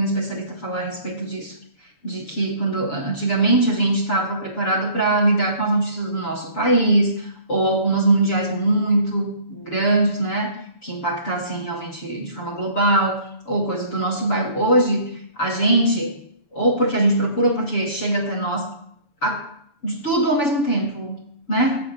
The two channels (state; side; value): late; right; 6.9 ms